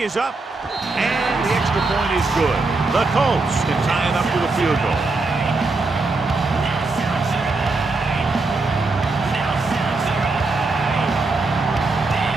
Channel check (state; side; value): quieter; left; 3.5 dB